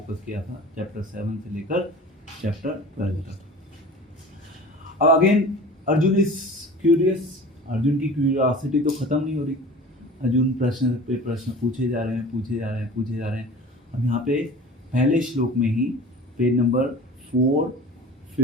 किया था, चैप्टर 7 से लेकर चैप्टर 12 तक। अब again Arjun is curious, Arjun की क्यूरियोसिटी तो ख़त्म नहीं हो रही। अर्जुन प्रश्न पे प्रश्न पूछे जा रहे हैं। अब यहाँ पे पहले श्लोक में ही पेज नंबर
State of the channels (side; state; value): both; normal; correlation 0.40